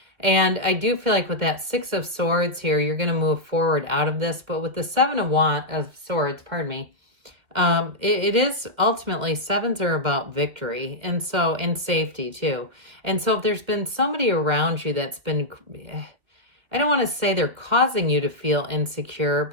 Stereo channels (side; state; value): left; late; 2.3 ms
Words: And I do feel like with that Six of Swords here, you're going to move forward out of this. But with the Seven of Swords, pardon me, it is ultimately, sevens are about victory, and so, and safety too. And so if there's been somebody around you that's been, I don't want to say they're causing you to feel insecure,